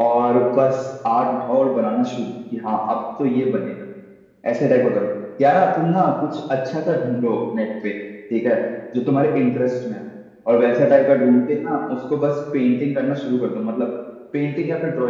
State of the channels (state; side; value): identical; both; correlation 1.00